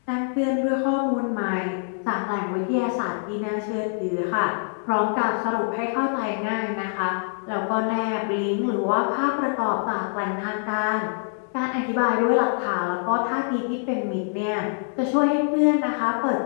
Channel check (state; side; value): silent; right; 62 dB below the other